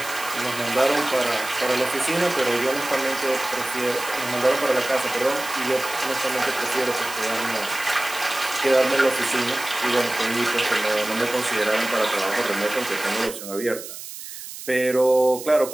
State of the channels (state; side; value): noise; right; hiss, 11 dB below the sound